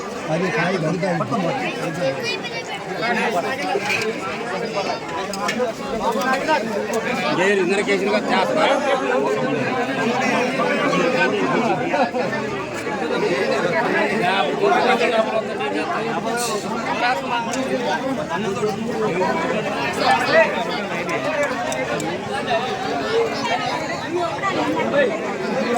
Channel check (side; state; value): both; identical; correlation 1.00